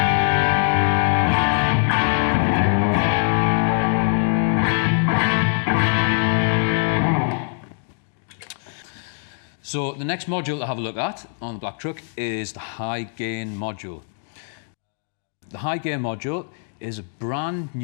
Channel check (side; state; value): right; silent; digital silence